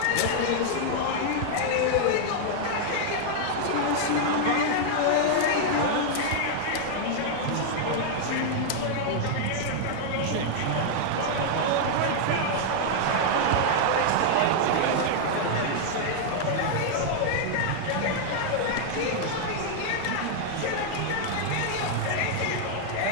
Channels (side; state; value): both; different; correlation 0.00